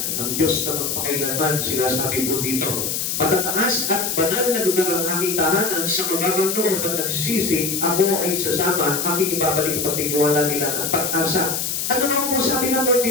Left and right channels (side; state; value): left; noise; hiss, 1 dB below the sound